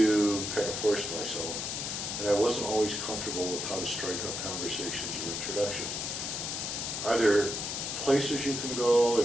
kind of force myself, and I wasn't always comfortable with how to strike up conversations or introductions. Are there places you can go,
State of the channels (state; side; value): noise; left; hiss, 3 dB below the sound